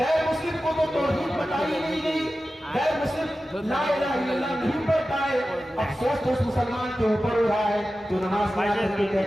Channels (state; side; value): normal; both; correlation 0.94